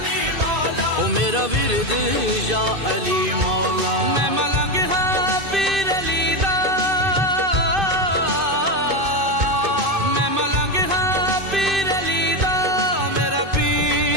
میرا ورد یا علی مولا، میں ملنگ ہاں پیر علی دا، میں ملنگ ہاں پیر علی دا، میرا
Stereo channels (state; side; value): late; left; 2.5 ms